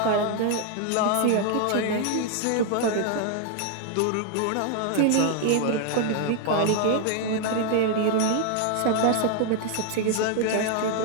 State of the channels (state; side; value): different; both; correlation 0.00